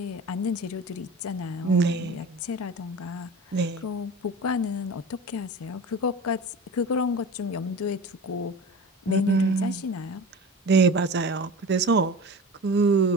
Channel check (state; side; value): normal; both; correlation 0.34